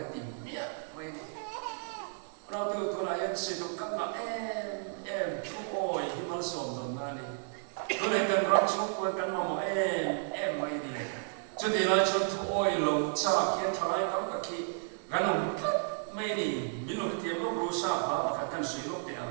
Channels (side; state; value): left; silent; digital silence